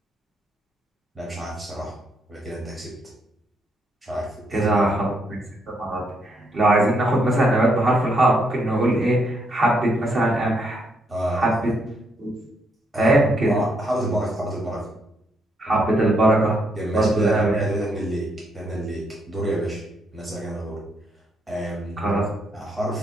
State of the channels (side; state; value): both; normal; correlation 0.75